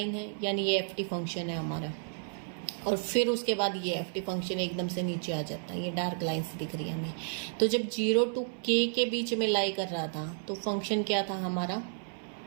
है यानी ये एफ टी फंक्शन है हमारा, और फिर उसके बाद ये एफ टी फंक्शन एकदम से नीचे आ जाता है, ये डार्क लाइन्स दिख रही है हमें। तो जब 0 to k के बीच में लाई कर रहा था तो फंक्शन क्या था हमारा,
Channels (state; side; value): silent; left; 57 dB below the other